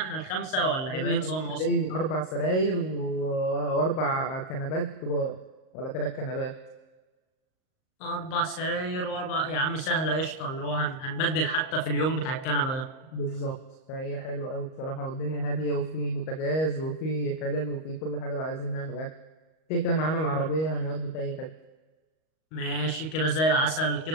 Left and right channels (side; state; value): right; late; 38 ms